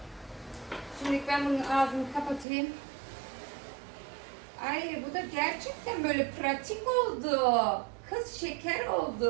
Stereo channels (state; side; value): drops out; left; at 2.5 s